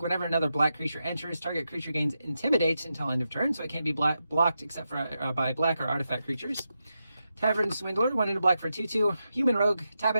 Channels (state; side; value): inverted; both; correlation -0.87